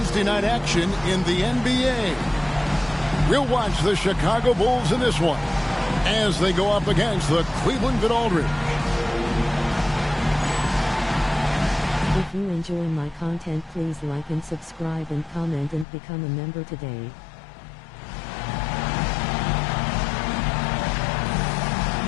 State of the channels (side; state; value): right; drops out; at 15.9 s